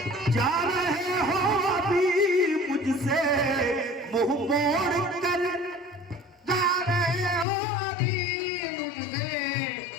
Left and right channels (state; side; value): drops out; right; at 7.5 s